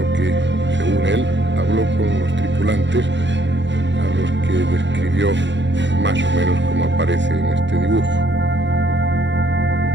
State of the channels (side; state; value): left; late; 0.53 ms